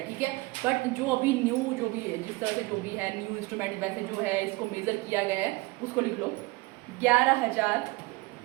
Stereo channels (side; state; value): left; quieter; 23.3 dB